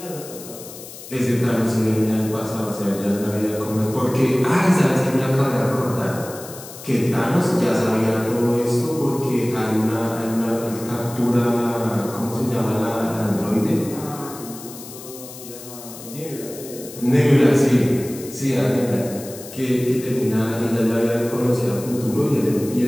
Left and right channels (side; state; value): left; noise; hiss, 15 dB below the sound